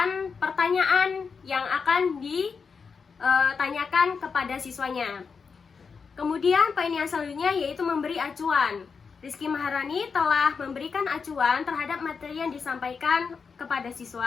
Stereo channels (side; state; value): right; quieter; 5.5 dB